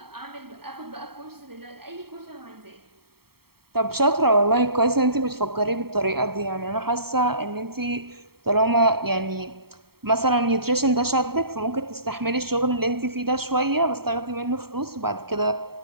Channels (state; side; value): late; left; 0.95 ms